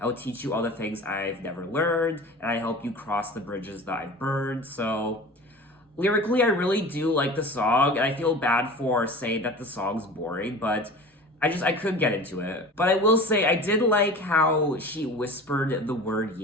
would teach you all the things I've never learned, and I help you cross the bridges that I've burned. So, lyrically, I really do like the song, and I feel bad for saying that the song's boring, but I couldn't get into it. But I will say, I did like how she whispered the word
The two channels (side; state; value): both; normal; correlation 0.37